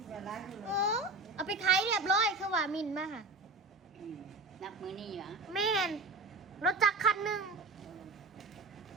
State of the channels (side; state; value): left; quieter; 3.2 dB